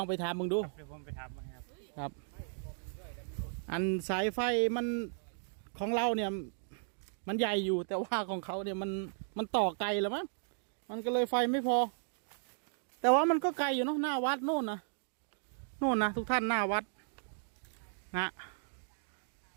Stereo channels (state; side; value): silent; left; digital silence